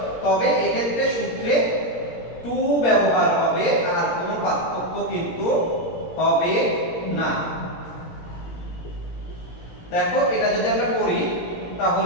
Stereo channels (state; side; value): late; right; 17 ms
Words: তবে এই ক্ষেত্রে সূত্রে 2 ব্যবহার হবে, আর কোনো পার্থক্য কিন্তু হবে না। দেখো, এটা যদি আমরা করি